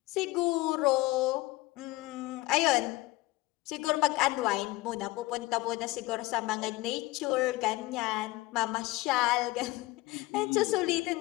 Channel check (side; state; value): right; quieter; 20.2 dB